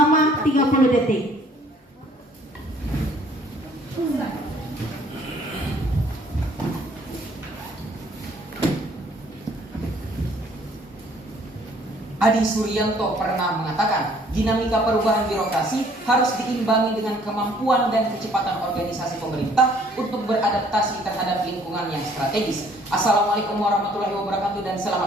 30 detik. Adi Suryanto pernah mengatakan, dinamika perubahan birokrasi harus diimbangi dengan kemampuan dan kecepatan organisasi pemerintah untuk beradaptasi terhadap lingkungan yang strategis. Assalamualaikum warahmatullahi wabarakatuh dan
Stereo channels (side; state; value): both; normal; correlation 0.60